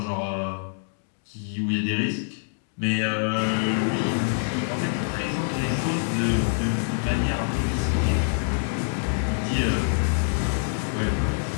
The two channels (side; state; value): right; silent; digital silence